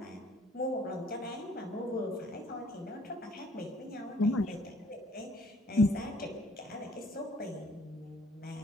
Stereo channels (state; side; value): normal; both; correlation 0.60